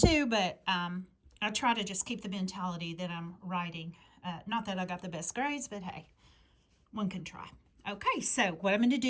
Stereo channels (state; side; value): identical; both; correlation 1.00